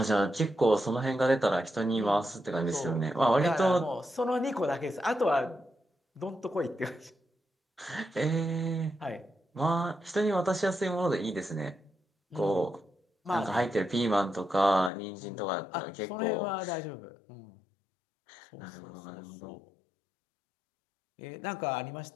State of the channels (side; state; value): right; drops out; at 14.9 s